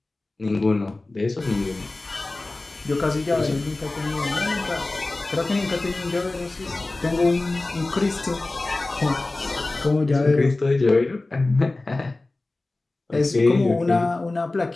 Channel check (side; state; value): right; quieter; 3.1 dB